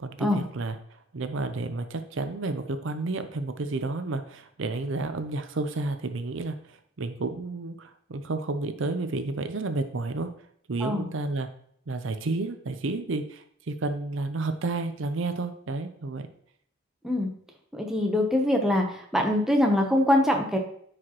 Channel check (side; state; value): both; normal; correlation 0.62